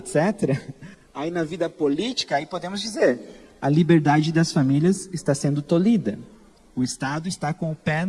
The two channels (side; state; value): both; identical; correlation 1.00